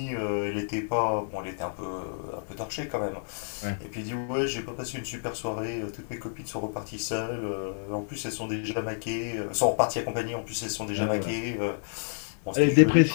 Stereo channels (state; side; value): silent; right; digital silence